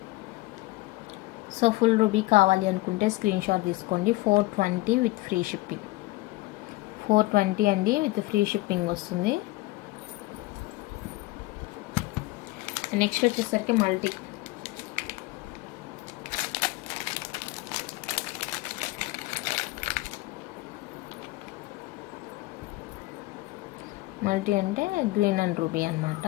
So full ruby కావాలి అనుకుంటే స్క్రీన్ షాట్ తీసుకోండి. 420 విత్ ఫ్రీ షిప్పింగ్. 420 అండి, విత్ ఫ్రీ షిప్పింగ్ వస్తుంది. నెక్స్ట్ వచ్చేసరికి మల్టీ. మల్టీ అంటే గ్రీన్ అండ్ రూబీ అనమాట.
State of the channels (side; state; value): right; quieter; 20.1 dB